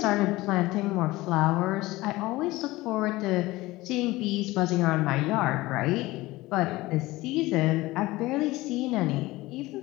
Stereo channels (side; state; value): right; quieter; 19.3 dB